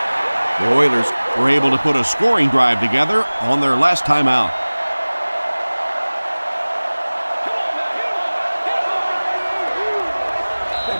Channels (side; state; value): both; inverted; correlation -1.00